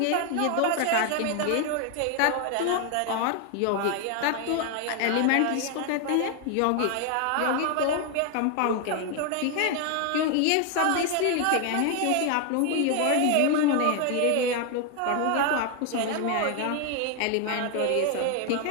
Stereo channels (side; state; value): both; different; correlation 0.01